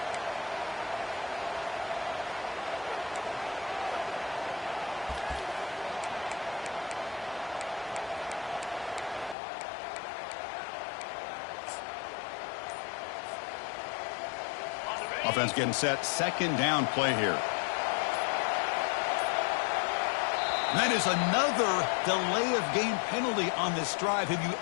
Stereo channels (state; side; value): drops out; right; at 9.3 s